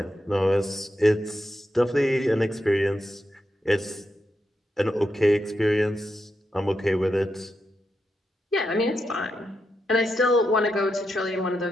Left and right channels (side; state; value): both; normal; correlation 0.85